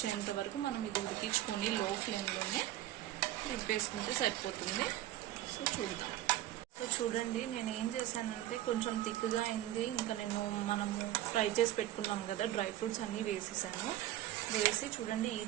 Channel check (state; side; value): quieter; left; 13.9 dB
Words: వరకు మనం ఇది ఉడికించుకొని లో ఫ్లేమ్లోనే వేసుకుంటే సరిపోతుంది. సో చూద్దాం. సో చూడండి, నేను ఏం చేశానంటే కొంచెం థిక్గా అయింది. ఇంకా మనము ఫ్రై చేసి పెట్టుకున్నాం కదా, డ్రై ఫ్రూట్స్ అన్నీ వేసేసాను. వేసి చూడండి ఈ